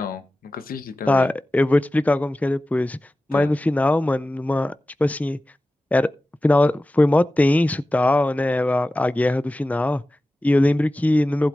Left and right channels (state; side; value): normal; both; correlation 0.95